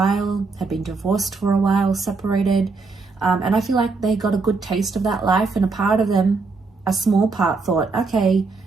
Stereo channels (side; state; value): left; quieter; 4.2 dB